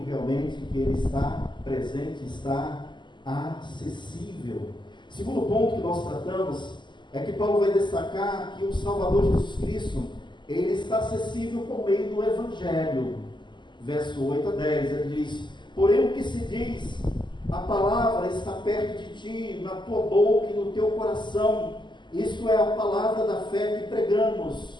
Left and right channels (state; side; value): late; right; 0.22 ms